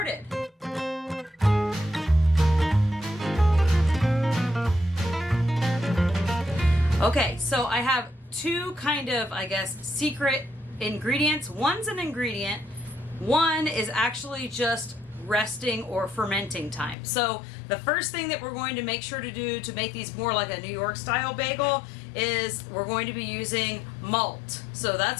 Okay, so I have two kind of, secret ingredients. One's an ingredient, one is actually just resting or fermenting time. So the first thing that we're going to make sure to do to make these more like a New York style bagel is we're going to be using malt. So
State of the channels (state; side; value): drops out; right; at 16.9 s